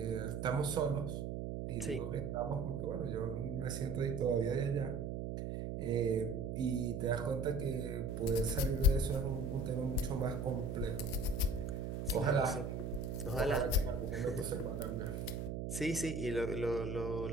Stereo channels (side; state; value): right; noise; hum, 3 dB below the sound